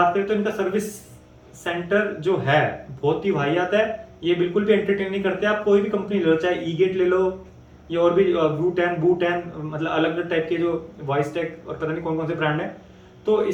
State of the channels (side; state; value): both; identical; correlation 1.00